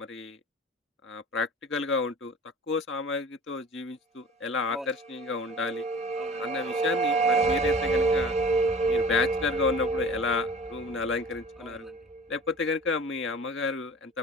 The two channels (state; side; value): normal; both; correlation 0.43